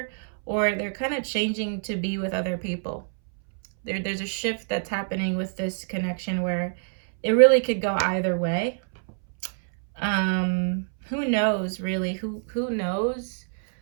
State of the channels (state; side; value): silent; left; 61 dB below the other